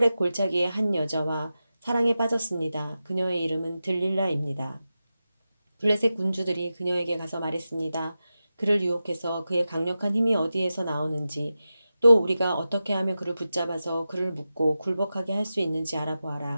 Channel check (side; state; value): both; inverted; correlation -0.92